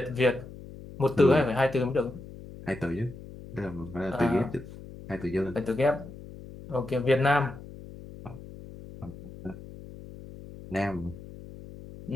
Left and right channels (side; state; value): left; noise; hum, 15 dB below the sound